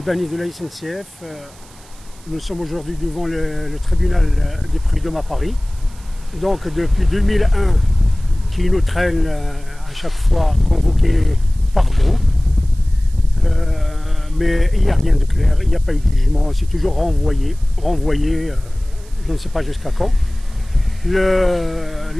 de la SNCF. Nous sommes aujourd'hui devant le tribunal des prud'hommes à Paris. Donc depuis 2001, qui nous traîne à chaque fois convoqués par groupe. Mais il n'y a rien de clair, il n'y a pas eu de jugement, c'est toujours renvoyé, je ne sais pas jusqu'à quand.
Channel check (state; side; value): noise; right; hiss, 25 dB below the sound